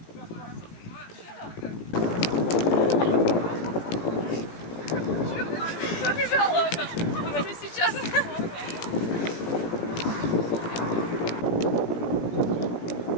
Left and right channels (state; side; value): late; right; 17 ms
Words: Побежала она. Выводи сейчас.